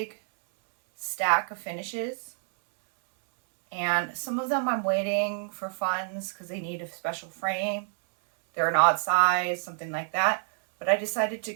stack of finishes, and some of them I'm waiting for funds because they need a special frame. They're an odd size, something like that. But I decided to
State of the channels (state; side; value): silent; left; 60 dB below the other